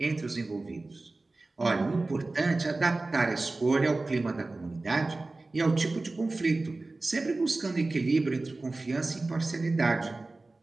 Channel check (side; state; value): left; quieter; 3.2 dB